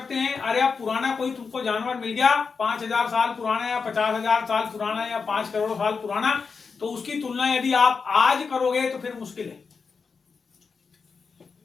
हैं। अरे अब पुराना कोई तुमको जानवर मिल गया 5000 साल पुराना या 50,000 साल पुराना या 5 करोड़ साल पुराना, तो उसकी तुलना यदि आप आज करोगे तो फिर मुश्किल है।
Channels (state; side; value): quieter; right; 5.2 dB